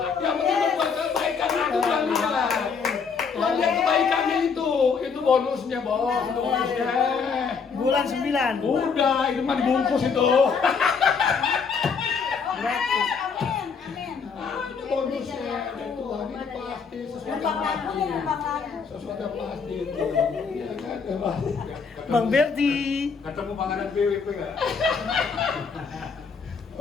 Yang penting berbuat kebaikan aku Tuhan lihat. Tuhan lihat kebaikannya itu bonusnya bos, itu bonusnya. Bulan 9. Udah, itu mah dibungkus itu. Amin, amin. Itu bonusnya. Dari Tuhan ini pasti sesuatu yang pasti. Sesuatu yang pasti itu. Iya kan, ya pasti. Bang Berti. Ketemu panganan PWP nggak?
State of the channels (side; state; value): right; quieter; 5.6 dB